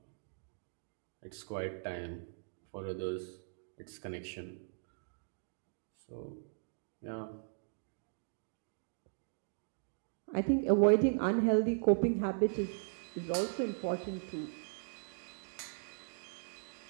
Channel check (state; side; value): silent; left; digital silence